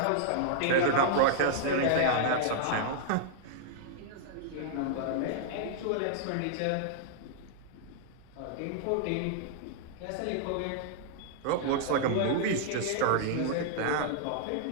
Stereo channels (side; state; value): both; different; correlation -0.01